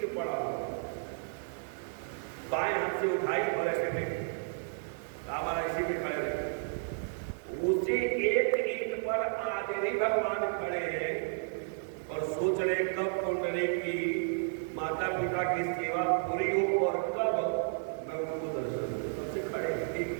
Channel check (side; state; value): left; silent; digital silence